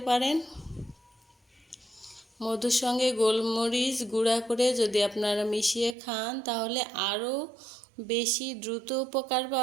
পারেন। মধুর সঙ্গে গোলমরিচ গুঁড়া করে যদি আপনারা মিশিয়ে খান তাহলে আরও বেশি দ্রুত উপকার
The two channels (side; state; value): left; drops out; at 6.0 s